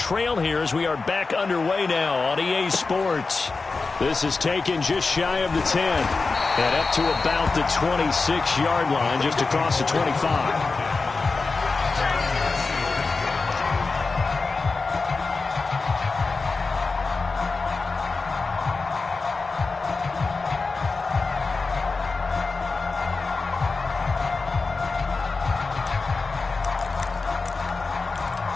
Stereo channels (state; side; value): quieter; right; 4.1 dB